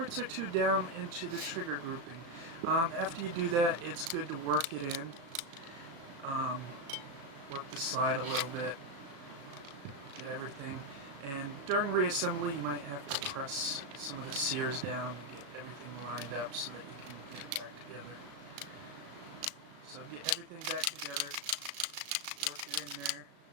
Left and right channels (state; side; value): late; left; 36 ms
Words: or two down into the trigger grouping. After you do that, it's good to work it in. Work the slide a little bit. Get everything. And during reassembly, you might have to press some of the sears down to get everything lined up so that you can get it back together. So get everything back together, work it in there,